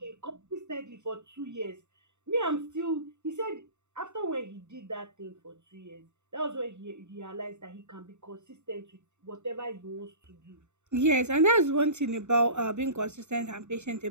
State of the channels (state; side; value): late; left; 0.83 ms